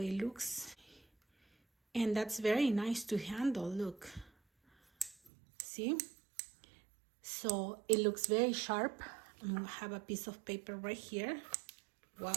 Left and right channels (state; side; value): drops out; left; at 5.3 s